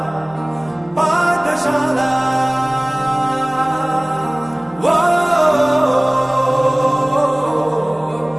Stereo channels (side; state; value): left; noise; hum, 29 dB below the sound